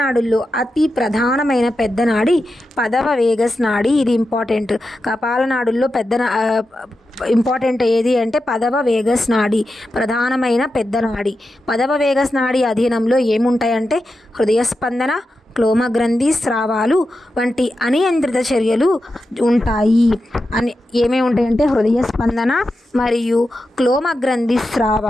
అతి ప్రధానమైన పెద్ద నాడి పదవ వేగస్ నాడి. ఇది ఇంపార్టెంట్. కపాలనాడుల్లో ఇంపార్టెంట్ ఏది అంటే పదవ వేగస్ నాడి, ప్రధానమైన పెద్ద నాడి. పదవ వేగస్ నాడి అధీనంలో ఏముంటాయంటే హృదయ స్పందన, క్లోమగ్రంథి స్రావాలు వంటి అనియంత్రిత చర్యలు ఉంటాయి. ఏమేమి ఉంటాయంటే హృదయ స్పందన మరియు క్లోమగ్రంథి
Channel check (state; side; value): normal; both; correlation 0.90